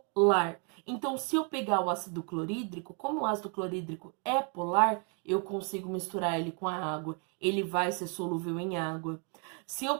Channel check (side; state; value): left; quieter; 38.0 dB